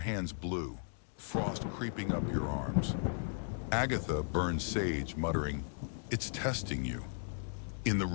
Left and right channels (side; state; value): right; silent; digital silence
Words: blue, frost creeping up your arms. Agatha burns sage, muttering, "It's testing you." In the